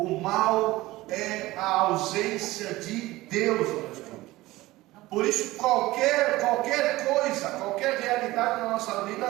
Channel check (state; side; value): quieter; left; 18.4 dB